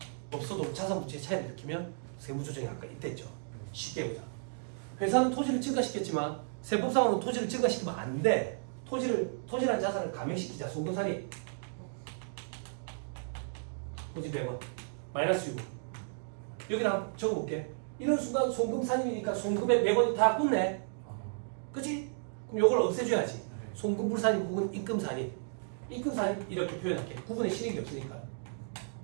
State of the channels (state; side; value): silent; left; digital silence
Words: 없어도 자산 부채의 차이를 일으키면 세무조정이 아까 있댔죠. 쉽게 보자. 회사는 토지를 증가시켰지만 세법상으로는 토지를 증가시키면 안 돼. 토지라는 자산을 감액시키자. 송금살이 토지 100원 마이너스 6원. 여기다 적어볼게. 이런 순간 송금살인이니까 송금의 100원이 다 붙네. 그치? 그럼 요걸 없애줘야지. 송금불살인 혹은 입금살인. 입금살인 이렇게 표현할게. 구분의 실익이 없으니까